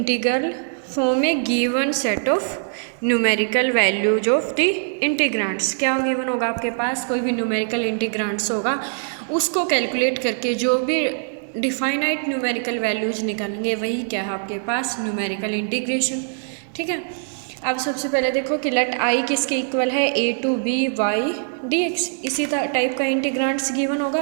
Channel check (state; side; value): silent; left; 64 dB below the other